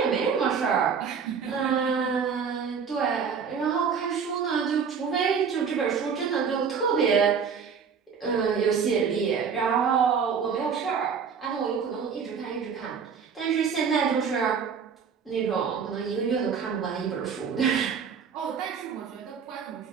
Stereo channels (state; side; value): quieter; left; 6.4 dB